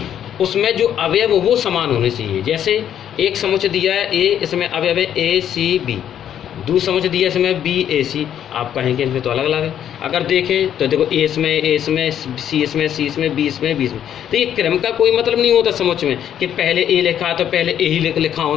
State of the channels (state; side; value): quieter; right; 9.9 dB